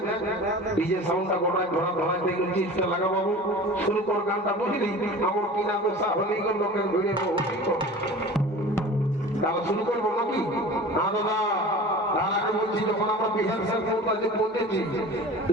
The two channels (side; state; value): both; normal; correlation 0.38